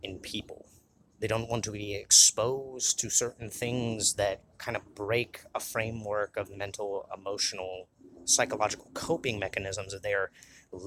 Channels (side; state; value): both; identical; correlation 1.00